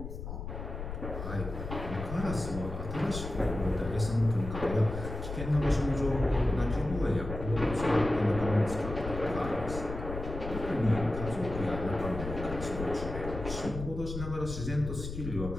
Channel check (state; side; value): noise; left; rumble, 7 dB below the sound